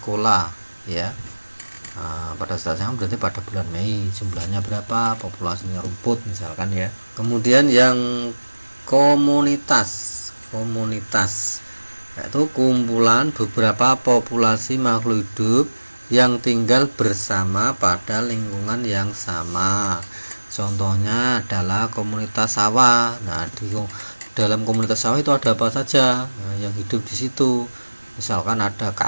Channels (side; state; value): both; inverted; correlation -1.00